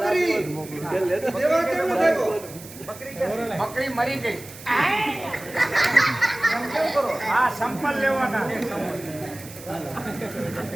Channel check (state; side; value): noise; right; hiss, 17 dB below the sound